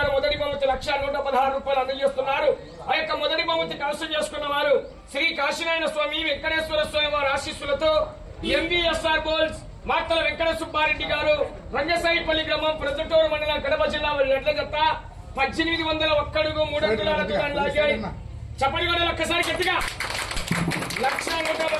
మొదటి బహుమతి 1,116 రూపాయలు అందజేస్తున్నారు. ఆ యొక్క మొదటి బహుమతి కలసం చేసుకున్న వారు శ్రీ కాశీనారాయణ స్వామి వెంకటేశ్వర స్వామి వారి ఆశీస్సులతో ఎంబీఎస్ఆర్ బోల్స్ మాటల వెంకట సుబ్బారెడ్డి గారు, రంగసాయిపల్లి గ్రామం ప్రజటూరు మండలం కడప జిల్లా వారి ఎడ్ల జత 1801 అడుగు 3 అంగుళాల దూరాన్ని లాగాయి. చప్పటి కూడా ఒక్కసారి గట్టిగా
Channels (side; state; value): both; identical; correlation 1.00